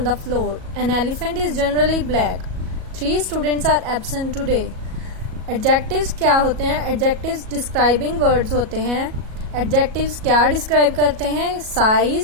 the floor. An elephant is generally black. 3 students are absent today. Adjectives क्या होते हैं? Adjectives describing words होते हैं. Adjectives क्या describe करते हैं?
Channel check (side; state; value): left; late; 37 ms